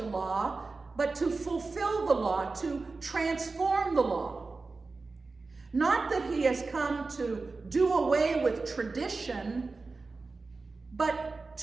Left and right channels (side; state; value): left; quieter; 3.9 dB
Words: law, but to fulfill the law, to transform the law. Not that he has come to do away with tradition, but